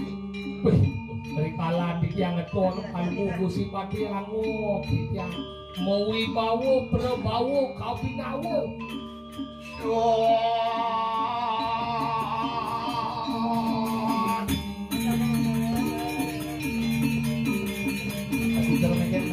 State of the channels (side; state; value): both; identical; correlation 1.00